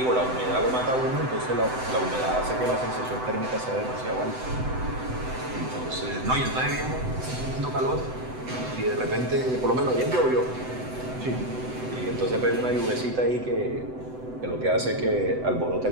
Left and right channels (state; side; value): late; left; 7.9 ms